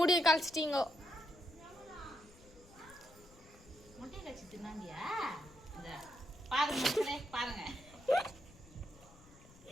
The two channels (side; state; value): left; noise; rumble, 24 dB below the sound